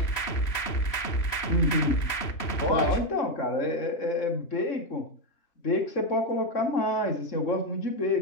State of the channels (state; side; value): late; right; 3.1 ms